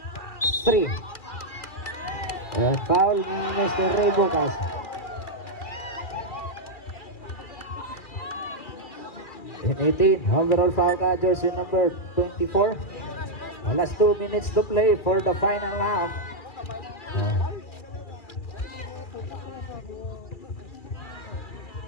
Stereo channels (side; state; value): right; late; 2.4 ms